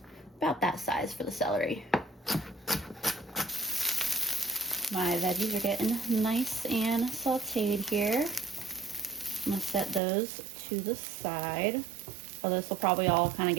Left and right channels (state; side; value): drops out; left; at 10.0 s